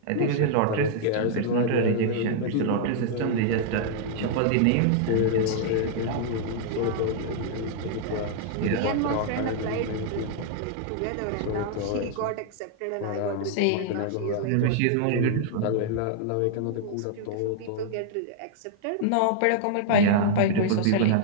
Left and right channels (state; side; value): different; both; correlation -0.01